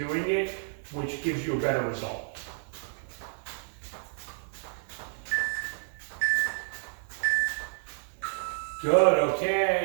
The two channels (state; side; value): silent; left; 58 dB below the other